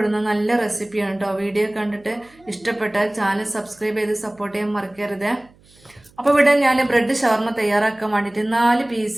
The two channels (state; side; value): noise; right; hum, 29 dB below the sound